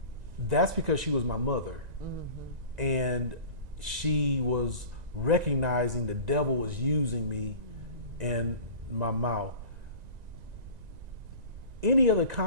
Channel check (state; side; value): late; left; 1.9 ms